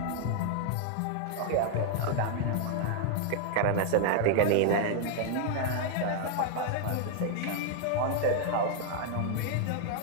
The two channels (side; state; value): both; different; correlation 0.00